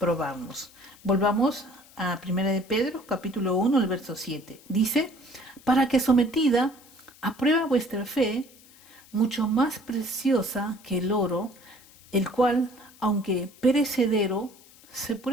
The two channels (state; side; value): noise; left; hiss, 25 dB below the sound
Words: Volvamos a 1 de Pedro, capítulo 1, el verso 7. Dice, para que sometida a prueba vuestra fe, mucho más preciosa que el oro, el cual, aunque perecedero, se